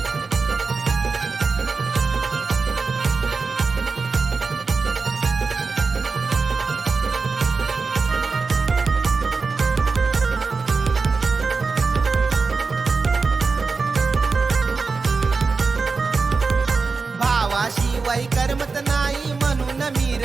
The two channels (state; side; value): quieter; left; 4.4 dB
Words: शिवाय करमत नाही म्हणून मी